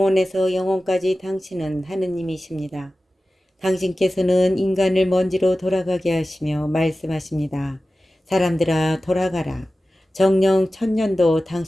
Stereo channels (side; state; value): both; normal; correlation 0.95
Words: 영원까지 당신은 하느님이십니다. 당신께서는 인간을 먼지로 돌아가게 하시며 말씀하십니다. 사람들아, 돌아가라. 정녕 천년도